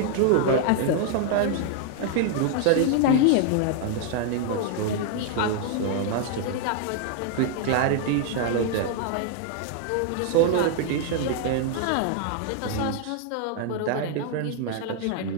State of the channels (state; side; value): different; both; correlation 0.00